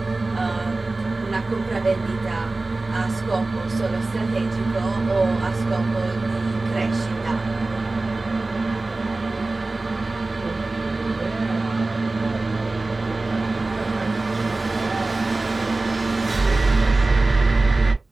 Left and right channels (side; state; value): left; quieter; 3.2 dB